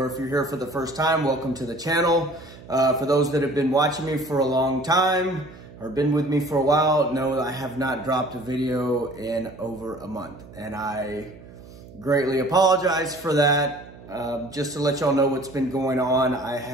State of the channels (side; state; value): right; noise; hum, 19 dB below the sound